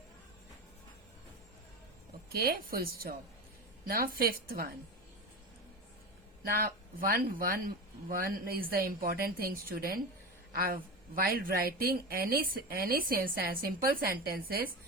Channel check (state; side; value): normal; both; correlation 0.23